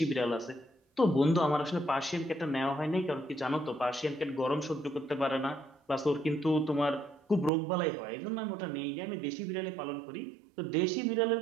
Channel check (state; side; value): drops out; left; at 7.5 s